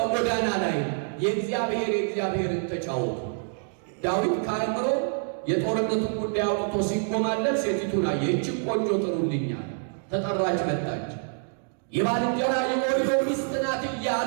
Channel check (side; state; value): left; silent; digital silence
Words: ላይ የእግዚአብሔርን ተጫወቱ። ዳዊት ከአእምሮ የጦርነቱን ጉዳይ አውጥቶ ሲጎማለት ሴቲቱን አየ። ይህችን ቆንጆ ጥሩልኛል። ተጠራች፣ መጣች። የባልንጀራ የኦርዮ ሚስት ናት